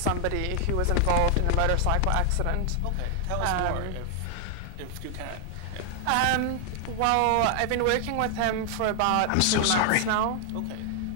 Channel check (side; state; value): both; different; correlation 0.00